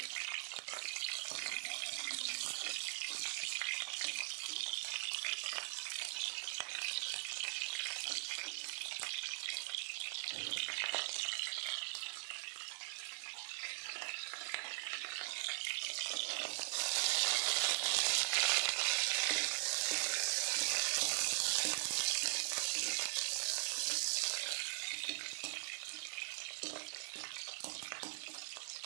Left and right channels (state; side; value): silent; left; digital silence